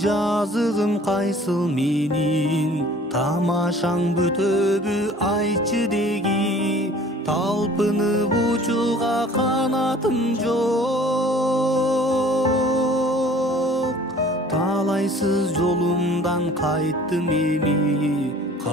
кайсыл менин, тамашаң бүтөбү айтчы деги. Талпынып учууга канатым жок. Талайсыз жолумдан кайттым эми.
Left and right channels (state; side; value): normal; both; correlation 0.50